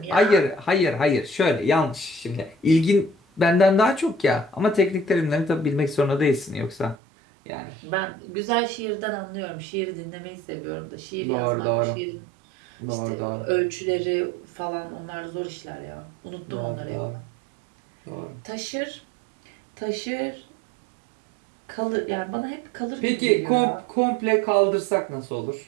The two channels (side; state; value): left; drops out; at 7.0 s